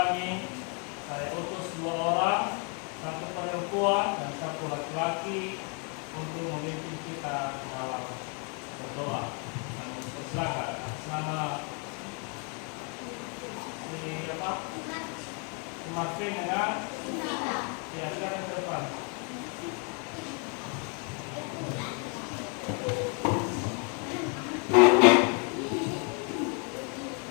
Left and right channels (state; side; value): quieter; right; 37.5 dB